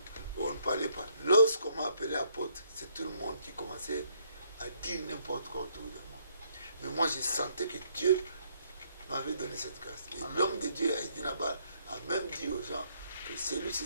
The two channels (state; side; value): inverted; both; correlation -0.69